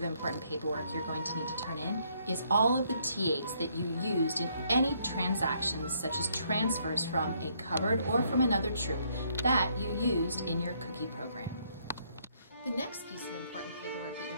important paperwork you're going to need to turn in is all of the T8s that you used in any transactions such as transfers from a covered or from another troop that you used in your cookie program. The next piece of important paperwork that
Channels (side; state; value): both; inverted; correlation -0.69